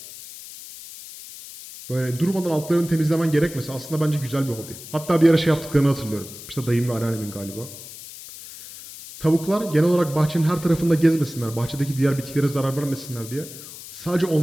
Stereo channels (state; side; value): noise; left; hiss, 14 dB below the sound